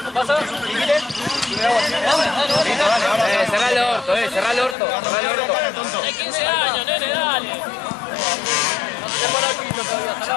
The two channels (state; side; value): drops out; right; at 4.8 s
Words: ¿Pasa? Cerrá el orto, cerrá el orto. Hay 15 años, nene, dale.